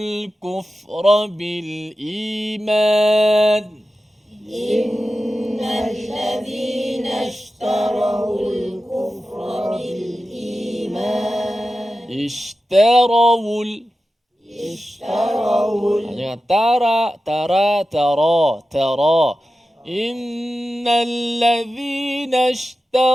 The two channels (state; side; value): normal; both; correlation 0.93